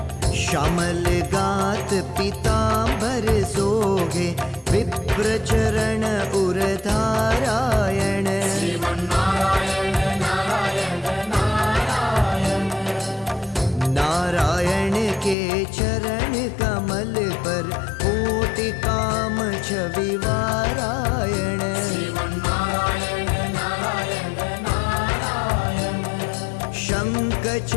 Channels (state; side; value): drops out; right; at 15.4 s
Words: श्यामल गात पीतांबर सोगे विप्र चरण उरधारायण श्रीमन्नारायण नारायण नारायण नारायण के चरण कमल पर कोटि काम छवि वारायण श्रीमन्नारायण नारायण नारायण शंख